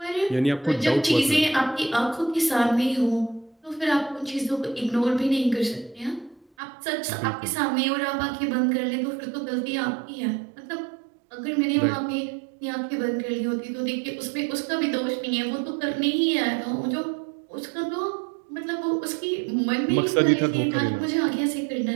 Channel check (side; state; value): left; drops out; at 6.5 s